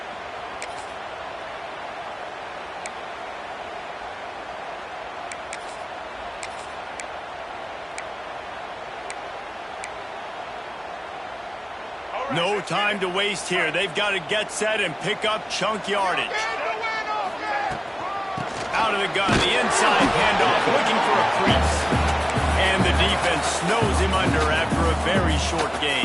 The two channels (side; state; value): both; identical; correlation 1.00